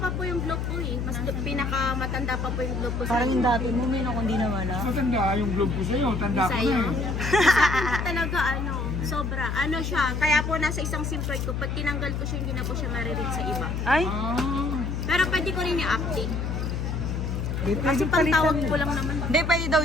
po yung globe po eh. Mas pinakamatanda pa po yung globe po sa Parang yung dati mo, may kung di nawala. Matanda yung globe ko sa'yo. Tanda ko na sa'yo. eh. Talaga ano, sobra. Ano siya, kaya po nasa isang SIM card ko, pag tinanggal ko siya, hindi na po siya mariread sa iba. Ay, Ah. Pero pwede ko rin i-update. Kasi pantawag ko lang naman. hindi, pwede daw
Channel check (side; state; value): left; noise; hum, 2 dB below the sound